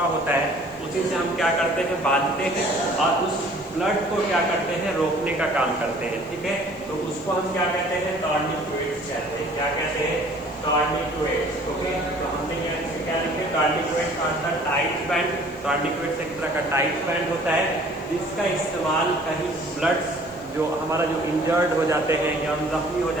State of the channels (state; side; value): noise; right; hiss, 28 dB below the sound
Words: होता है उसी से हम क्या करते हैं? बांधते हैं और उस ब्लड को क्या करते हैं? रोकने का काम करते हैं, ठीक है। तो उसको हम क्या कहते हैं? टॉर्निक्वेट्स कहते हैं। क्या कहते हैं? टॉर्निक्वेट्स, ओके। तो हमने यहाँ क्या लिखे? टॉर्निक्वेट्स आर द टाइट बैंड। टॉर्निक्वेट्स एक तरह का टाइट बैंड होता है जिसका इस्तेमाल कहीं ब्लड्स जो हमारा जो इंजर्ड हो जाते हैं या हम जख्मी हो